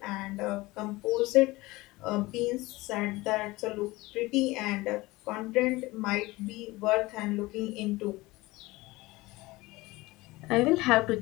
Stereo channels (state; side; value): quieter; right; 20.7 dB